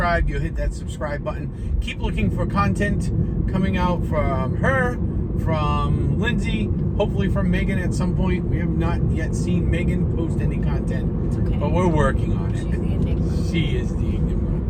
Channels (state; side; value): identical; both; correlation 1.00